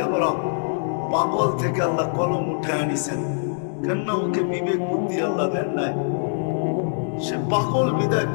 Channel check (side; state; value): right; silent; digital silence